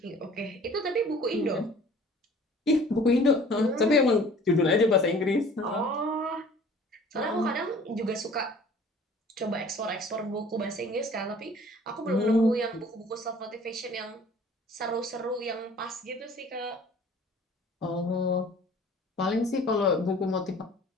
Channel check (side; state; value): both; normal; correlation 0.49